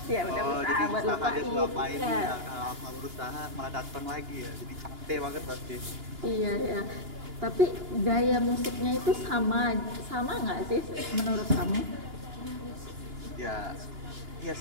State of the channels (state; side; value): late; left; 2.9 ms